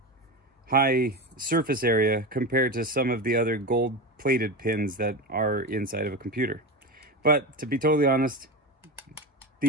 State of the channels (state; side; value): normal; both; correlation 0.21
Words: surface area compared to some of the other gold plated pins that are inside of a computer. But to be totally honest,